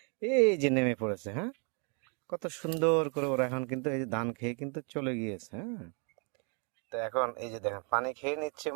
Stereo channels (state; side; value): quieter; left; 37.1 dB